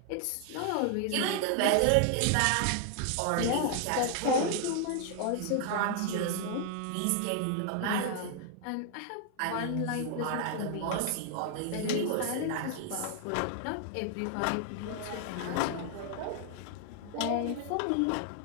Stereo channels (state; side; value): different; both; correlation 0.00